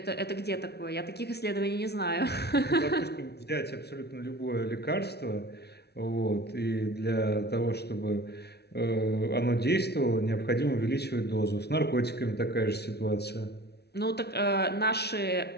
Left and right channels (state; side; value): late; right; 0.48 ms